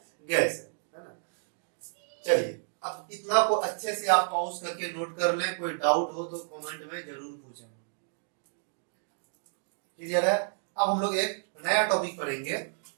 गैस है ना। चलिए अब इतना को अच्छे से आप पॉज करके नोट कर लें, कोई डाउट हो तो कमेंट में जरूर पूछें। क्लियर है। अब हम लोग एक नया टॉपिक पढ़ेंगे,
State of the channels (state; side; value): silent; left; digital silence